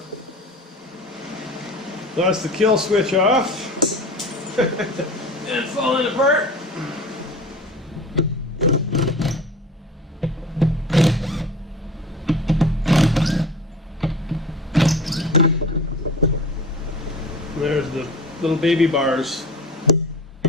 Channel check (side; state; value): both; normal; correlation 0.37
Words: That's the kill switch off. And it's falling apart. There's the little baby bars.